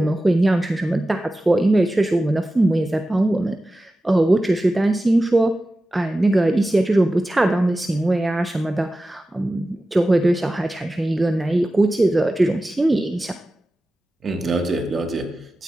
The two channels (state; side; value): normal; both; correlation 0.94